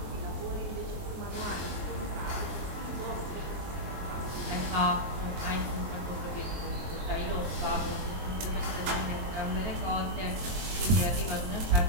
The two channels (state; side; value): late; left; 23 ms